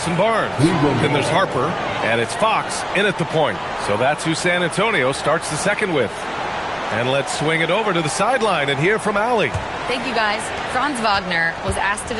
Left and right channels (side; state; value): both; identical; correlation 1.00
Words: Barnes. Then there's Harper, and it's Fox in at the point. So that's who San Antonio starts the second with. And let's swing it over to the sideline and hear from Allie. Thank you, guys. Franz Wagner was asked to